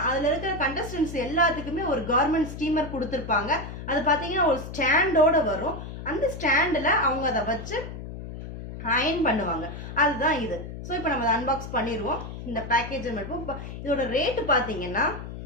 அதில் இருக்கிற கண்டஸ்டன்ஸ் எல்லாத்துக்குமே ஒரு கார்மெண்ட் ஸ்டீமர் கொடுத்துருப்பாங்க. அது பார்த்தீங்கன்னா ஒரு ஸ்டாண்டோட வரும். அந்த ஸ்டாண்டில் அவங்க அதை வச்சு அயன் பண்ணுவாங்க. அதுதான் இது. ஸோ இப்போ நம்ம அதை அன்பாக்ஸ் பண்ணிடுவோம். இந்த பேக்கேஜை மட்டும் இதோட ரேட்டு பார்த்தீங்கன்னா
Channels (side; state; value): left; noise; hum, 10 dB below the sound